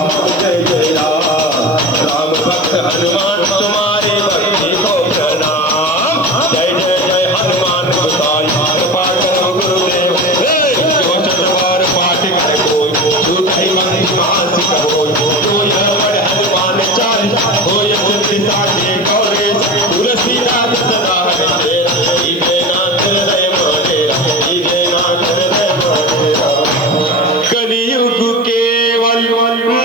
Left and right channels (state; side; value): noise; right; hiss, 29 dB below the sound